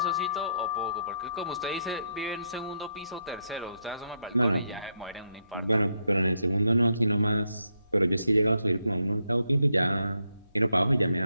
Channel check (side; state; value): both; inverted; correlation -0.79